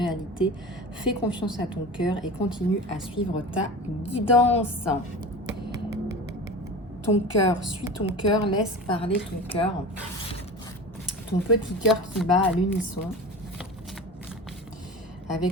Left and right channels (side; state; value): both; normal; correlation 0.33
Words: Fais confiance à ton cœur et continue à suivre ta guidance. Ton cœur, suis ton cœur, laisse parler ton cœur. Ton petit cœur qui bat à l'unisson